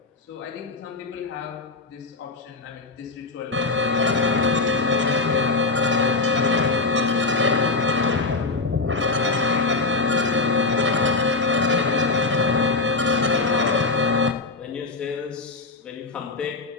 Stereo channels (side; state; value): right; quieter; 3.7 dB